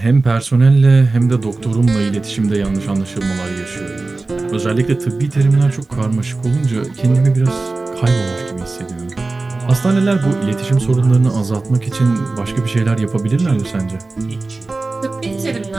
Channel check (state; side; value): quieter; left; 3.4 dB